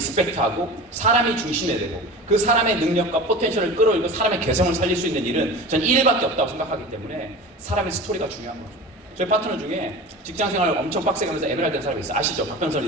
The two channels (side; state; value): both; normal; correlation 0.33